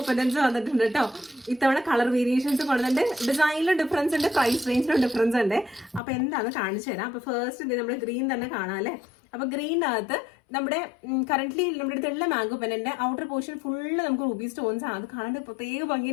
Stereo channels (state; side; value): drops out; right; at 6.0 s